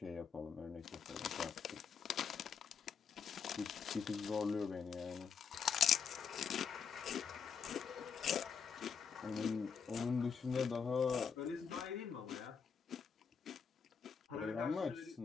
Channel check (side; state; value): right; quieter; 6.5 dB